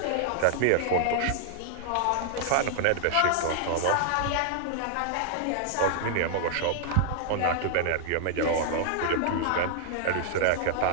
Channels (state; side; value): different; both; correlation -0.01